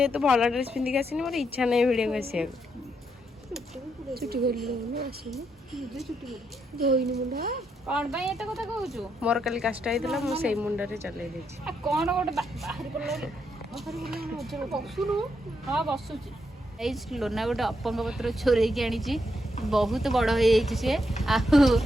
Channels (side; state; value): both; normal; correlation 0.79